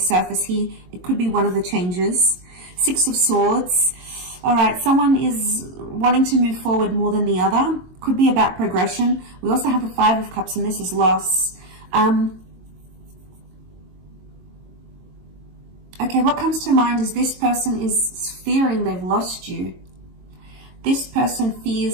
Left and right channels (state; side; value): late; left; 22 ms